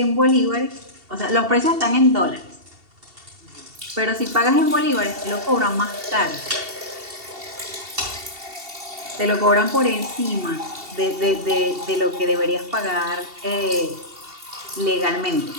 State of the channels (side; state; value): left; late; 2.7 ms